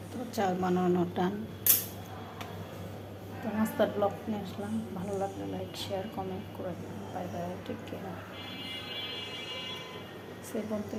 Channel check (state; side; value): identical; both; correlation 1.00